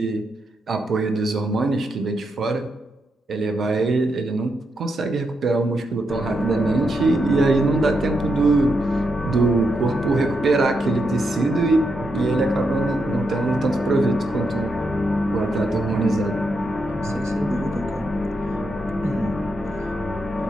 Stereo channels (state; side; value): normal; both; correlation 0.82